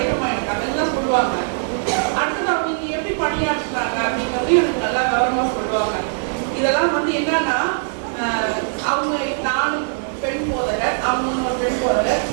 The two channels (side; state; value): left; silent; digital silence